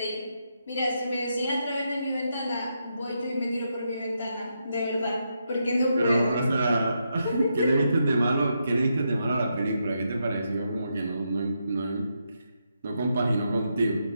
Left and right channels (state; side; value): inverted; both; correlation -0.82